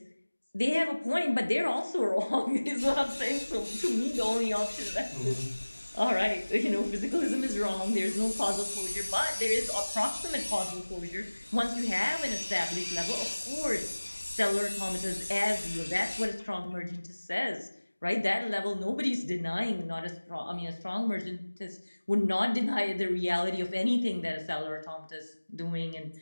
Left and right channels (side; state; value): both; inverted; correlation -1.00